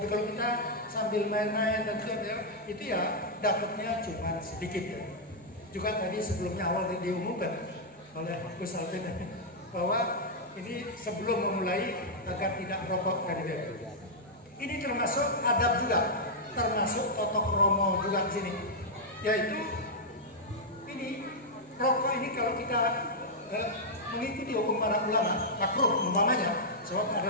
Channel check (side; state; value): both; normal; correlation -0.05